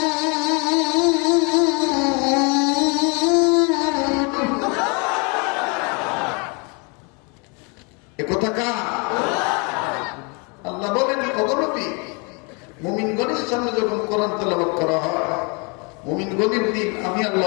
একথা কার? আল্লাহ বলেন, অগণতি মুমিনগণের সামনে যখন কোরআন তেলাওয়াত করা হয়, মুমিনগণের দিন আমি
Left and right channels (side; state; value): right; quieter; 32.7 dB